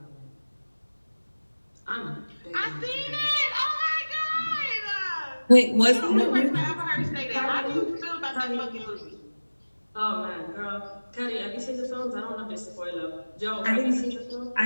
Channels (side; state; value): both; inverted; correlation -1.00